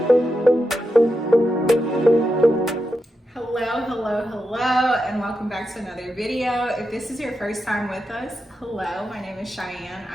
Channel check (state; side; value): normal; both; correlation 0.87